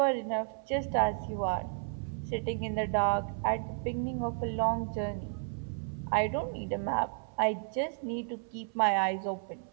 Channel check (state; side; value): silent; left; 56 dB below the other